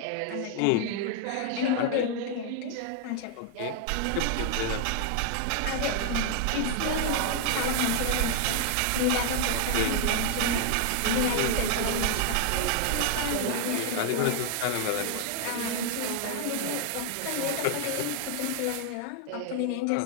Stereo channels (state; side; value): different; both; correlation 0.00